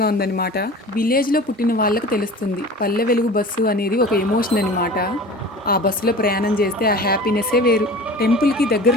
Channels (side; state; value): both; normal; correlation 0.39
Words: ఉందనమాట. విలేజ్‌లో పుట్టిన వాళ్ళకి తెలుస్తుంది. పల్లె వెలుగు బస్సు అనేది ఒక ఎమోషన్ అనమాట. ఆ బస్సులో ప్రయాణం చేస్తే ఆ హ్యాపీనెస్సే వేరు. టెంపుల్‌కి